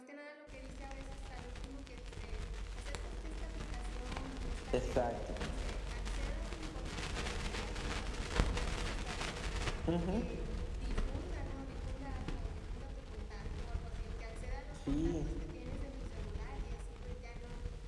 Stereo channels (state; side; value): identical; both; correlation 1.00